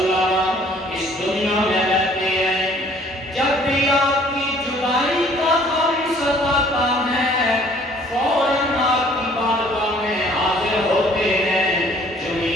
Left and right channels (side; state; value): both; normal; correlation 0.57